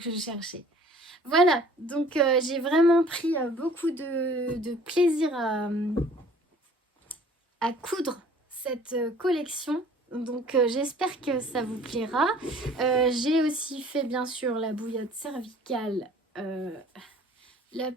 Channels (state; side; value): normal; both; correlation 0.52